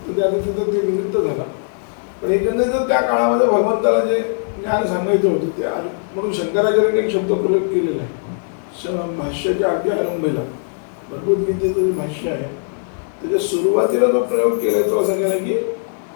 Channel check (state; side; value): silent; right; digital silence